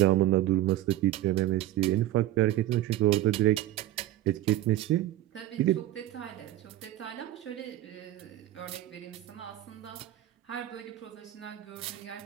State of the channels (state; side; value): quieter; left; 14.3 dB